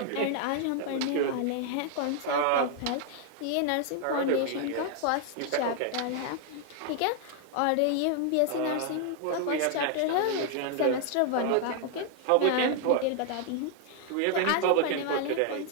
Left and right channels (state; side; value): different; both; correlation 0.00